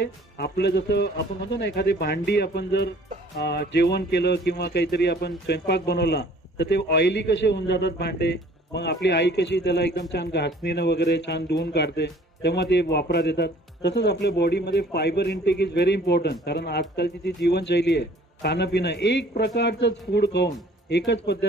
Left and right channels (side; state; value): both; normal; correlation 0.53